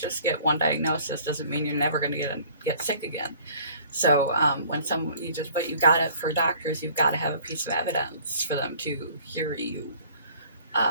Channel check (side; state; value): both; inverted; correlation -0.52